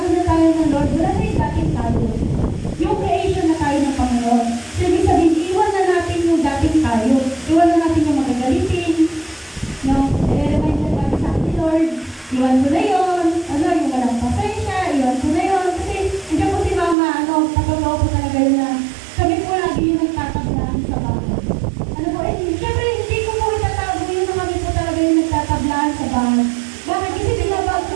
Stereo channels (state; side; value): drops out; left; at 16.9 s